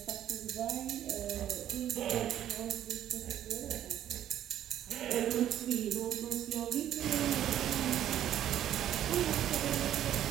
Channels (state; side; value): quieter; left; 11.2 dB